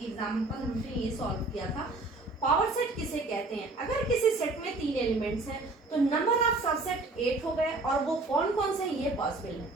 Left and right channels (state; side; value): quieter; left; 3.3 dB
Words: एग्जांपल हमने ये सॉल्व किया था। पावर सेट किसे कहते हैं? अगर किसी सेट में 3 एलिमेंट्स हैं तो नंबर ऑफ सबसेट 8 हो गए, और वो कौन कौन से ये पॉसिबल है।